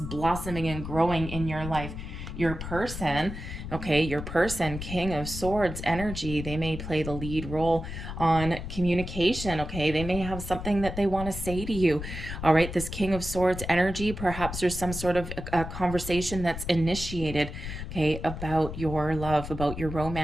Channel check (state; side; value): noise; left; rumble, 8 dB below the sound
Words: and growing in your life. Your person, okay, your person, King of Swords energy, they may play the lead role on communication, okay? They may have something that they want to say to you, all right? This King of Swords energy, perhaps there's some sort of a conversation that's initiated, okay, about your love, about your